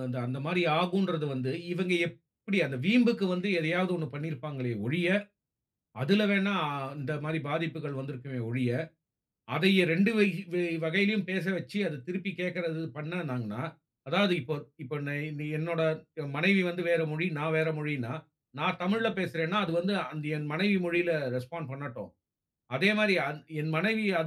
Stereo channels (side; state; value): both; identical; correlation 1.00